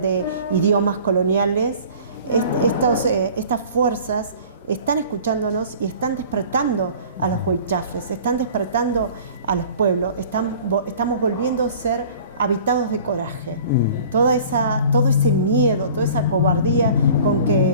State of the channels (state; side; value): inverted; both; correlation -0.46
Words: idiomas coloniales, estas fuerzas están escuchándonos y están despertando a los huichafes, están despertando a los pueblos, estamos volviendo a ser habitados de coraje. Todo ese miedo, toda esa cobardía con